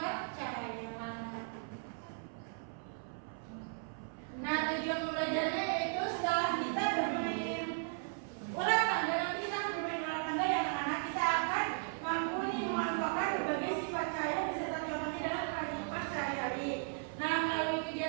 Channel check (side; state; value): left; silent; 54 dB below the other